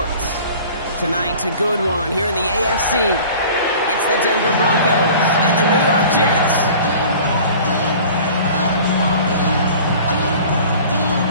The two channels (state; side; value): inverted; both; correlation -0.44